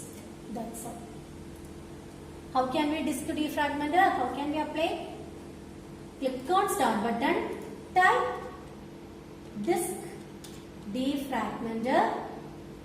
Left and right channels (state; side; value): identical; both; correlation 1.00